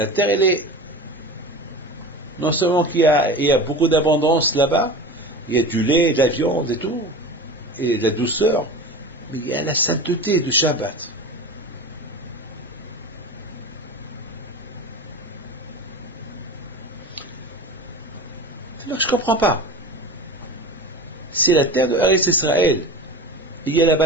terre, elle est, non seulement qu'il y a beaucoup d'abondance là-bas, il y a du lait, de la viande et tout, et de la douceur, mais il y a la sainteté du Shabbat. Alors je ne comprends pas. C'est la terre de Eretz Israël. Il y a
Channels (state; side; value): normal; both; correlation 0.31